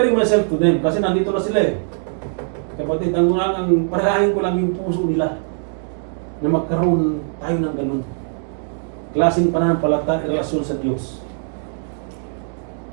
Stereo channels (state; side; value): silent; left; 63 dB below the other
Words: myself to them kasi nandito na sila eh. Kapatid, ang panalangin ko lang yung puso nila na magkaroon tayo ng ganun. Klaseng pananampalataya, relasyon sa Diyos.